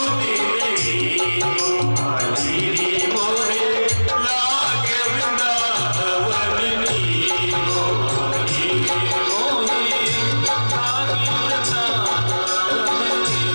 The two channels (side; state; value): both; inverted; correlation -1.00